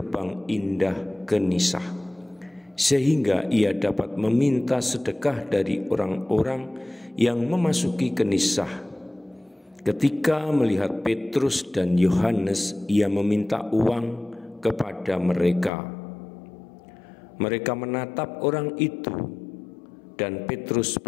indah Genisah, sehingga ia dapat meminta sedekah dari orang-orang yang memasuki Genisah. Ketika melihat Petrus dan Yohanes, ia meminta uang kepada mereka. Mereka menatap orang itu, dan Petrus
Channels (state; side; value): drops out; right; at 15.7 s